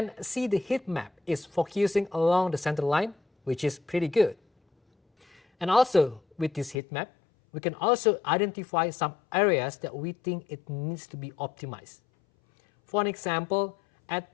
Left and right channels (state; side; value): drops out; right; at 6.8 s